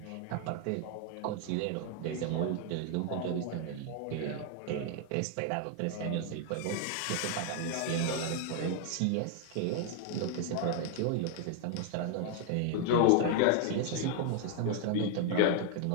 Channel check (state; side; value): different; both; correlation 0.00